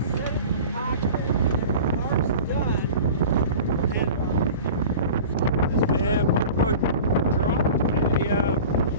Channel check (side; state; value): both; inverted; correlation -0.38